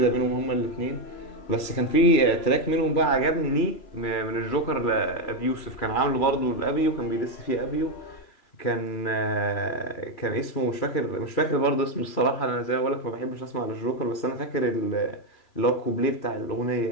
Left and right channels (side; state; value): right; late; 3.0 ms